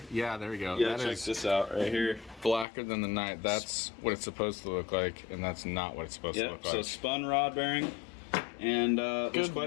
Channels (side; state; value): right; drops out; at 2.7 s